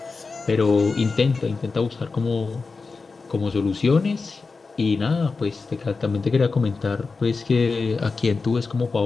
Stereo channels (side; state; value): right; quieter; 4.3 dB